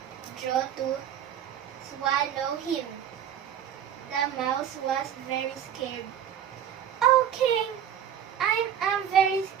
jaw to swallow him. The mouse was very scared. Oh, King, I'm very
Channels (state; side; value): quieter; left; 9.4 dB